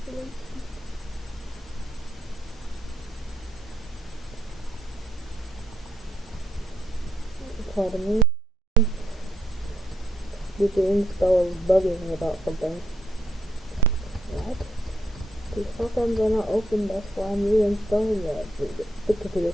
Pardon me. The install is bugging about something. What? These programs are not open, that's why I'm reinstalling it. The computer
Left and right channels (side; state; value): both; normal; correlation 0.76